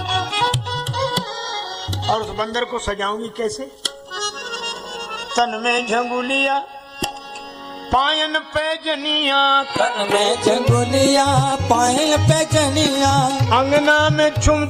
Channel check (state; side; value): identical; both; correlation 1.00